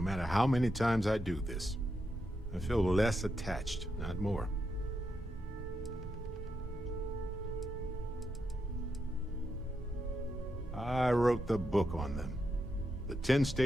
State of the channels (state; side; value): normal; both; correlation 0.84